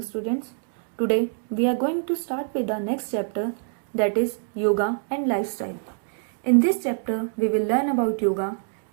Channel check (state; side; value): silent; left; 62 dB below the other